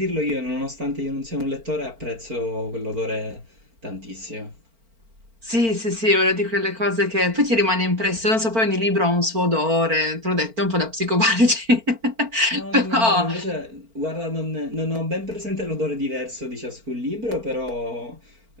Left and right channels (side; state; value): left; late; 4.4 ms